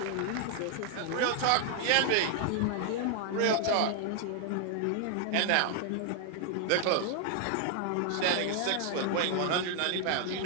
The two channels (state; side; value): different; both; correlation 0.00